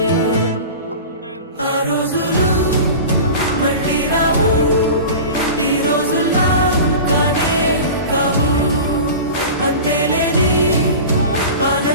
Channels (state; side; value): inverted; both; correlation -0.34